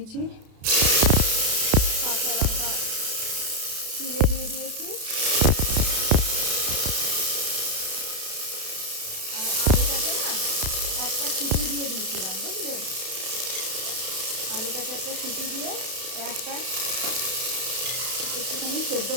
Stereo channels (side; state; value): left; late; 32 ms